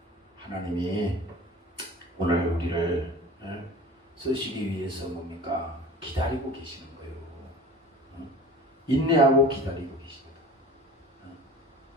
하나님이 오늘 우리를 쓰시기 위해서 뭡니까? 기다리고 계시는 거예요. 인내하고 기다리고 계십니다.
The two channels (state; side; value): normal; both; correlation 0.40